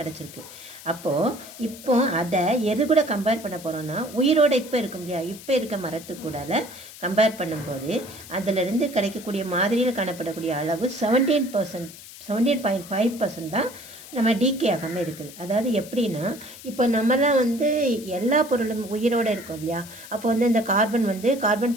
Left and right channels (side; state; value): left; noise; hiss, 16 dB below the sound